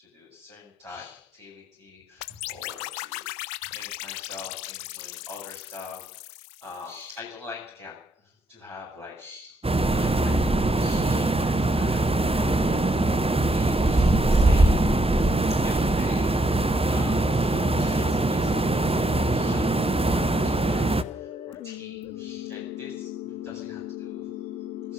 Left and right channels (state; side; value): normal; both; correlation 0.74